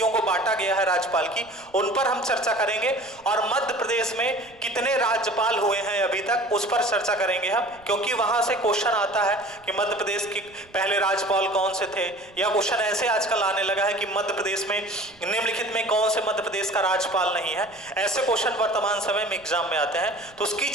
को बांटा गया है राज्यपाल की, उन पर हम चर्चा करेंगे। और मध्य प्रदेश में कितने राज्यपाल हुए हैं अभी तक, उस पर चर्चा करेंगे हम, क्योंकि वहां से क्वेश्चन आता है कि मध्य प्रदेश के पहले राज्यपाल कौन से थे, या क्वेश्चन ऐसे आजकल आने लगा है कि मध्य प्रदेश में निम्नलिखित में कौन से मध्य प्रदेश का राज्यपाल नहीं है। ऐसे क्वेश्चन वर्तमान समय में एग्जाम में आते हैं, तो उसकी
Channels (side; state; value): right; noise; rumble, 28 dB below the sound